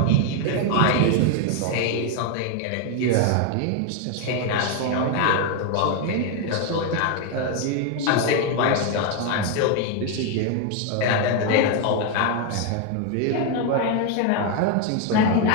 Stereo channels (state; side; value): different; both; correlation 0.01